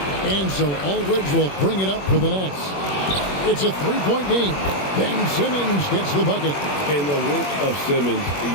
And so Aldridge will bring it up for the Nets. It's a three-point game. Ben Simmons gets the bucket. And the work of Simmons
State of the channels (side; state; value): right; late; 21 ms